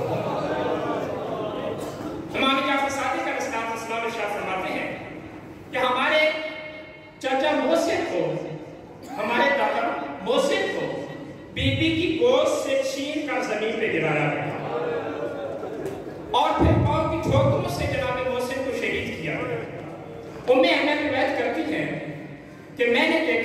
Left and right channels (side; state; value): both; identical; correlation 1.00